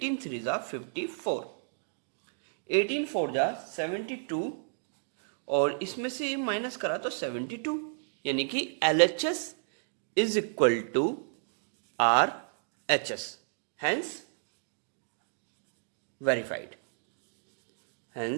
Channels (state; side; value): silent; left; digital silence